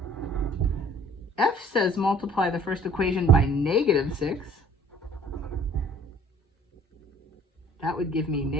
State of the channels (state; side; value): normal; both; correlation 0.53